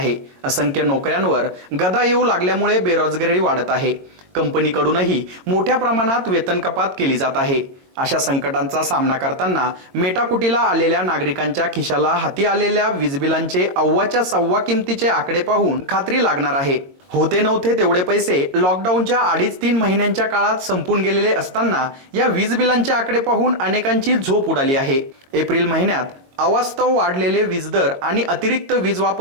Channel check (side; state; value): left; late; 22 ms